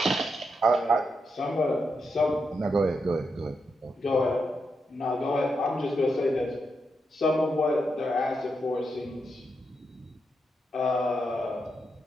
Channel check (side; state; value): both; normal; correlation 0.84